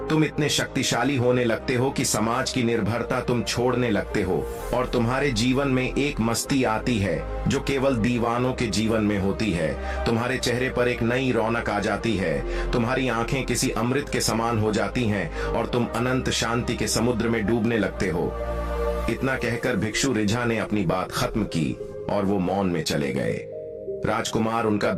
तुम इतने शक्तिशाली होने लगते हो कि समाज की निर्भरता तुम छोड़ने लगते हो और तुम्हारे जीवन में एक मस्ती आती है जो केवल दीवानों के जीवन में होती है। तुम्हारे चेहरे पर एक नई रौनक आ जाती है, तुम्हारी आंखें किसी अमृत के समान हो जाती हैं और तुम अनंत शांति के समुद्र में डूबने लगते हो। इतना कहकर भिक्षु रिझा ने अपनी बात खत्म की और वो मौन में चले गए। राजकुमार उनका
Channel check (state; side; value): identical; both; correlation 1.00